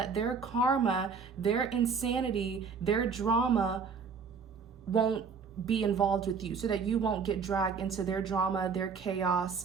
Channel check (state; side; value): quieter; left; 5.6 dB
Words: their karma, their insanity, their drama won't be involved with you, so that you won't get dragged into their drama, their